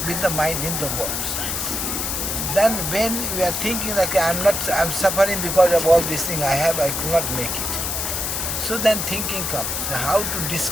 with the mind in the world. Then when we are thinking like I'm suffering because of all these things I could not make it. So then thinking comes, how to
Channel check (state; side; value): noise; left; hiss, 1 dB below the sound